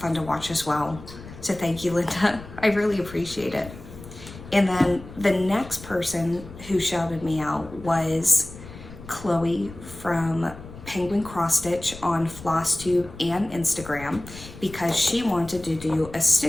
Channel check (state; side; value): noise; left; rumble, 15 dB below the sound